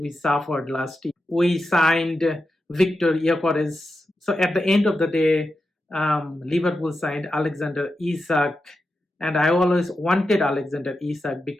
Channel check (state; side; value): normal; both; correlation 0.89